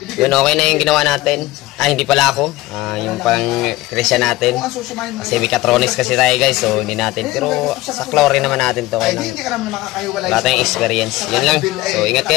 Yun, okay na yung ginawa natin. Hindi pala ako. Yung pang Christian natin. Kasi Mechatronics kasi tayo guys. So hindi natin. Pero sa chlorine naman natin to. Kaya lang, wala tayong experience. Yun lang. So ingat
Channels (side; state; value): right; quieter; 18.0 dB